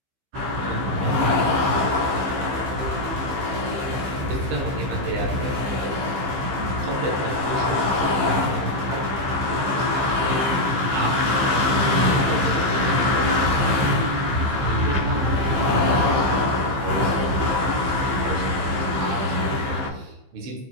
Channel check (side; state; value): left; late; 15 ms